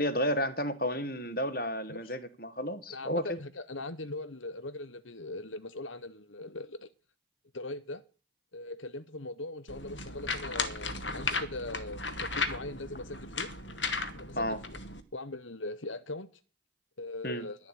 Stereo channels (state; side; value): normal; both; correlation -0.11